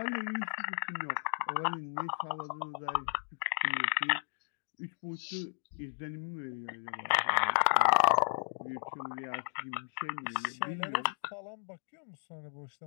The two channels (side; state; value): right; silent; digital silence